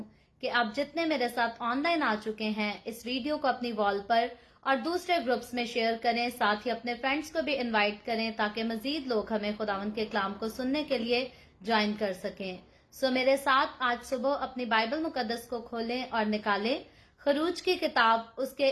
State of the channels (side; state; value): both; identical; correlation 1.00